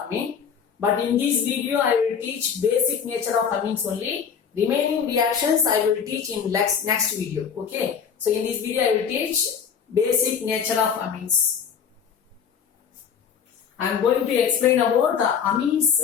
But in this video I will teach basic nature of amines only. Remaining reactions I will teach in next video, okay. So in this video I will teach basic nature of amines. I am going to explain about the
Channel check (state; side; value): quieter; right; 7.2 dB